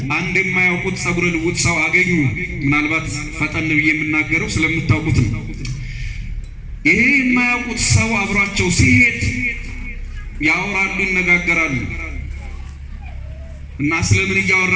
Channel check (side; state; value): both; identical; correlation 1.00